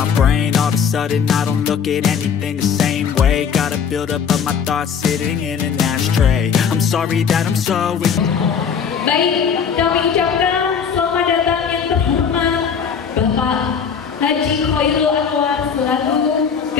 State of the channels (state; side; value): quieter; right; 6.9 dB